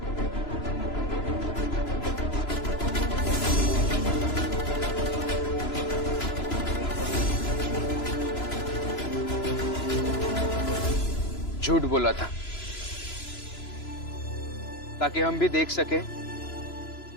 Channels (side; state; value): right; late; 3.0 ms